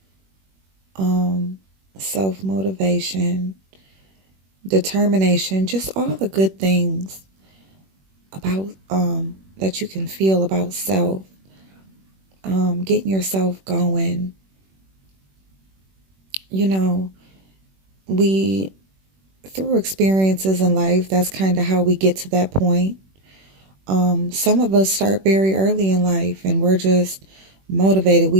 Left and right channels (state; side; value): late; left; 21 ms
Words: self-motivation, determination, just all the good things about that you can feel about self, getting yourself going. We through experiences in life, that's kind of how we get to that point. Some of us start very early in life and we're just motivated.